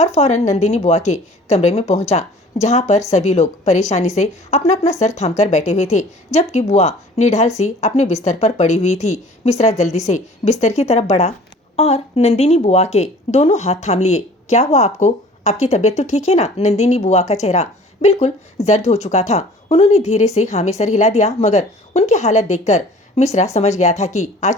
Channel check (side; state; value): both; normal; correlation 0.48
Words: और फौरन नंदिनी बुआ के कमरे में पहुंचा, जहां पर सभी लोग परेशानी से अपना अपना सर थामकर बैठे हुए थे, जबकि बुआ निढाल सी अपने बिस्तर पर पड़ी हुई थी। मिश्रा जल्दी से बिस्तर की तरफ बढ़ा और नंदिनी बुआ के दोनों हाथ थाम लिए। क्या हुआ आपको? आपकी तबीयत तो ठीक है ना? नंदिनी बुआ का चेहरा बिल्कुल जर्द हो चुका था। उन्होंने धीरे से हाँ में सर हिला दिया, मगर उनकी हालत देखकर मिश्रा समझ गया था कि